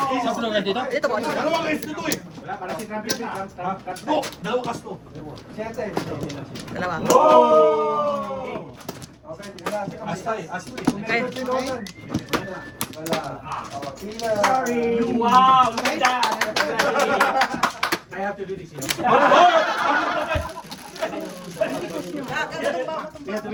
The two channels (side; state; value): both; identical; correlation 1.00